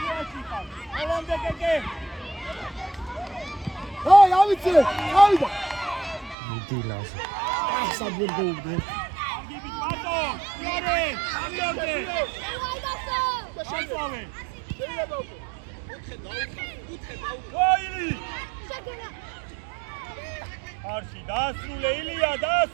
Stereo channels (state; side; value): drops out; left; at 6.4 s